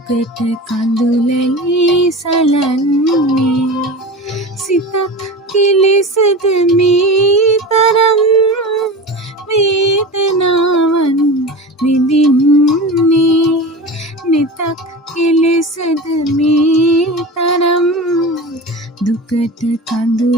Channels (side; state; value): both; normal; correlation 0.30